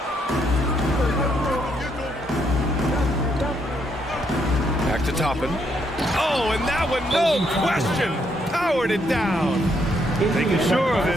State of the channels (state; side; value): normal; both; correlation 0.74